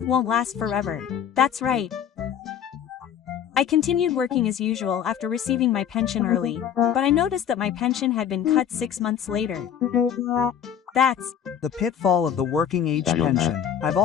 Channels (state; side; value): quieter; right; 8.8 dB